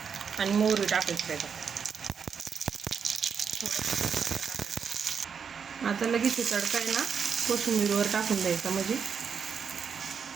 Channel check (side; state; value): left; quieter; 6.6 dB